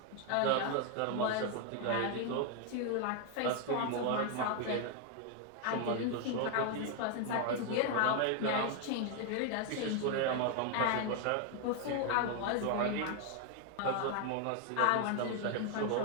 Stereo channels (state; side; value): different; both; correlation 0.01